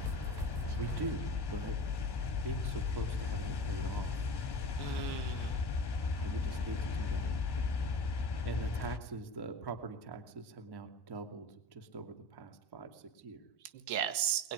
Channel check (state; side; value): late; right; 1.1 ms